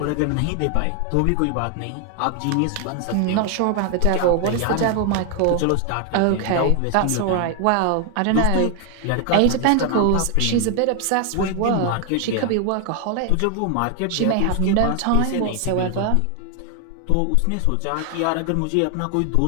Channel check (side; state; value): both; different; correlation 0.00